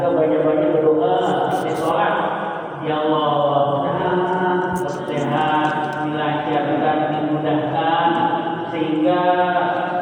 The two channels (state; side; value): identical; both; correlation 1.00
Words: banyak-banyak berdoa di sholat. Ya Allah, mudah-mudahan sehat, dilancarkan, dimudahkan sehingga